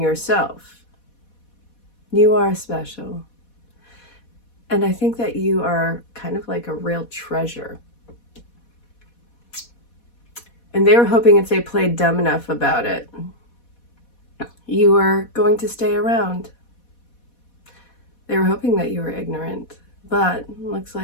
You are special. And I think that you are kind of like a real treasure. And they were hoping if they played dumb enough about it, you were going to stay around. They were hoping that you were ignorant. But it looks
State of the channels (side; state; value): right; late; 4.1 ms